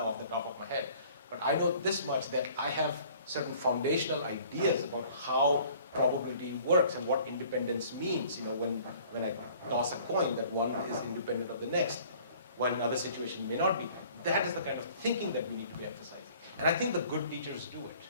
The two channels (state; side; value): inverted; both; correlation -0.53